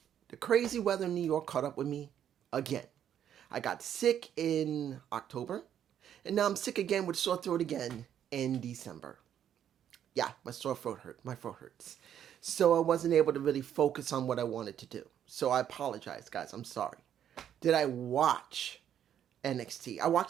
The crazy weather in New York caught up with me again. I got sick in October, and now I'm sick again with sore throat again in December. Yeah, my sore throat hurt. My throat hurts. So I wasn't able to really focus on what I wanted to do. So I apologize, guys. I'm sorry. Did I watch NXT? I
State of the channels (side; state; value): left; quieter; 9.8 dB